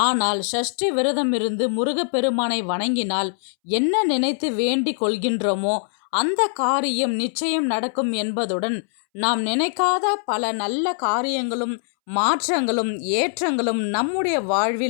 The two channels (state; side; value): silent; right; 64 dB below the other